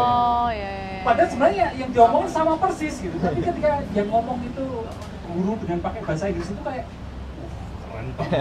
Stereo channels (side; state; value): both; identical; correlation 1.00